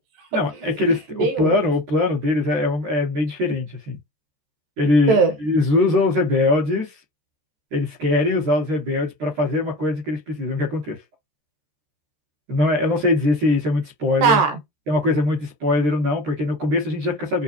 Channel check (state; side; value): late; left; 13 ms